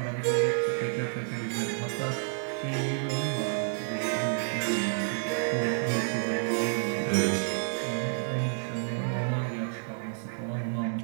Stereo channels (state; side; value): silent; left; digital silence